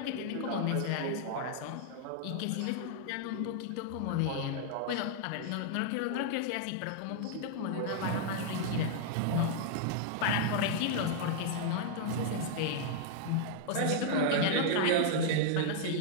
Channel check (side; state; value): both; different; correlation -0.01